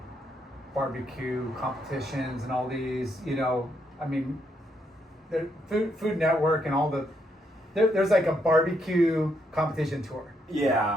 barbecue competitions and all these. You know, I mean, the Food Network and all the. There's like a barbecue competition tour.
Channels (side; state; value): both; normal; correlation 0.76